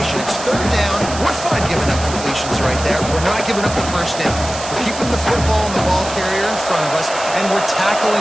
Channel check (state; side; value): noise; right; hiss, 10 dB below the sound